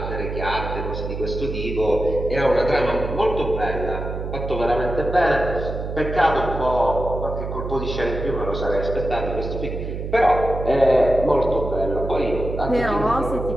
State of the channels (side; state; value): right; noise; hum, 6 dB below the sound